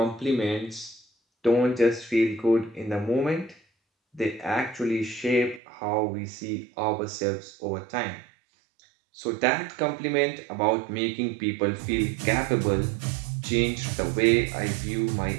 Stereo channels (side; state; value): left; drops out; at 5.6 s